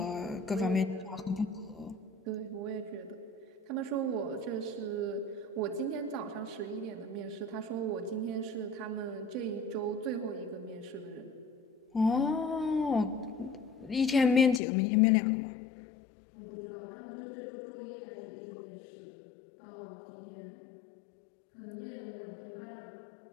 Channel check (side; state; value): right; drops out; at 14.6 s